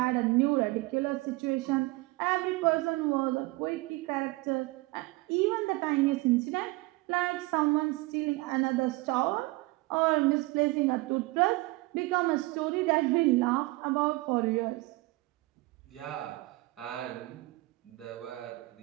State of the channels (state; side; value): quieter; left; 22.1 dB